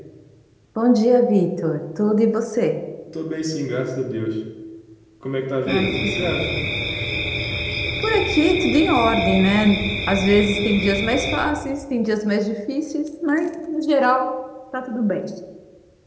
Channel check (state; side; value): identical; both; correlation 1.00